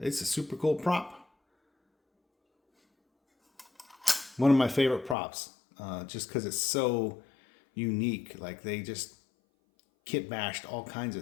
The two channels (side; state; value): right; drops out; at 5.2 s